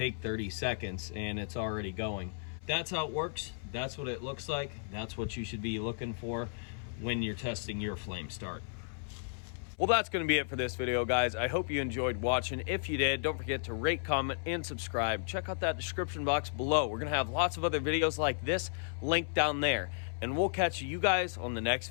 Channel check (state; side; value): silent; right; 55 dB below the other